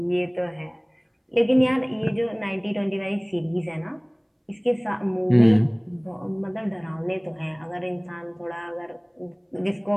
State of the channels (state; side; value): identical; both; correlation 1.00